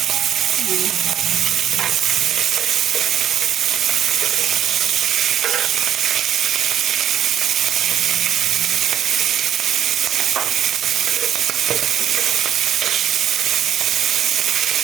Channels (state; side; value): quieter; left; 10.3 dB